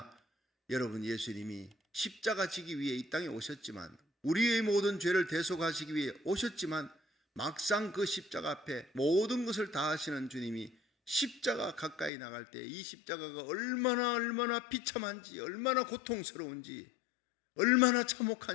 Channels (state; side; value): drops out; right; at 12.1 s